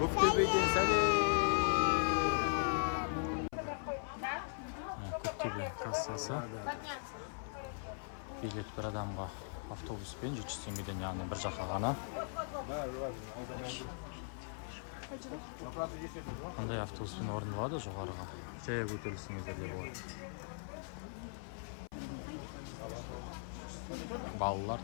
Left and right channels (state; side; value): silent; right; 52 dB below the other